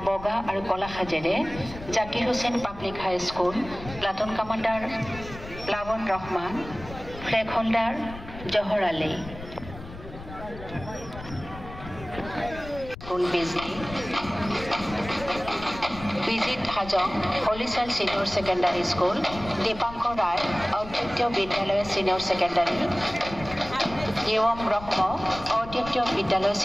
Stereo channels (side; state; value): left; noise; rumble, 14 dB below the sound